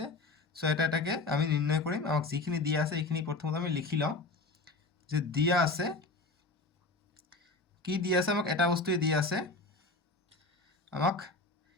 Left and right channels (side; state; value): right; quieter; 3.4 dB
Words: সো এটাকে আমি নির্ণয় করিম। আমাক যিখিনি দিয়া আছে এইখিনি প্রথমত আমি লিখি লওঁ যে দিয়া আছে কি দিয়া আছে, আমাক এটা বস্তুই দিয়া আছে। আমাক